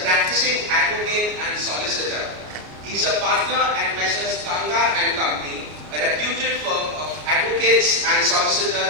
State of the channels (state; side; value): late; left; 33 ms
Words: practicing advocate and solicitor. He is a partner at Messrs. Kanga and Company, a reputed firm of advocates and